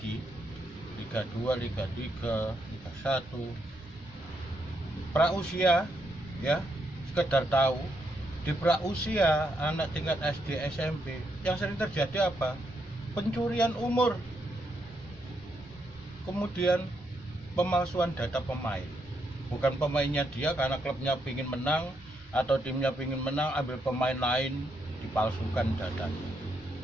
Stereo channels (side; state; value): both; normal; correlation 0.78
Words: Liga 2, Liga 3, Liga 1. Prausia ya, sekedar tahu di prausia anak tingkat SD SMP yang sering terjadi apa? Pencurian umur. Kemudian pemalsuan data pemain. Bukan pemainnya dia karena klubnya ingin menang atau timnya ingin menang, ambil pemain lain dipalsukan datanya.